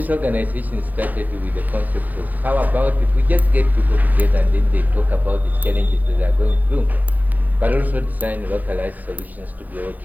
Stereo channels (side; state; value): left; late; 0.082 ms